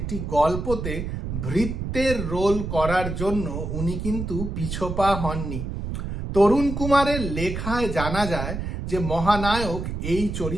গল্পতে ভৃত্যের রোল করার জন্য উনি কিন্তু পিছপা হননি। তরুণ কুমারের লেখায় জানা যায় যে মহানায়ক এই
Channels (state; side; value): noise; right; rumble, 5 dB below the sound